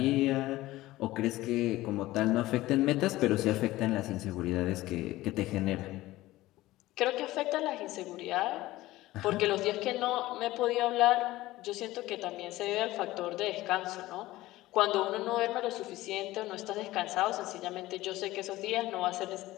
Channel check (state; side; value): quieter; right; 17.3 dB